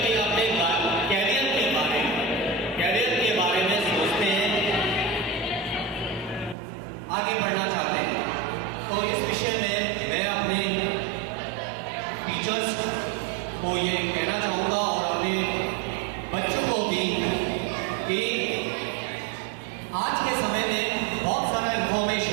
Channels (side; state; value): left; drops out; at 6.6 s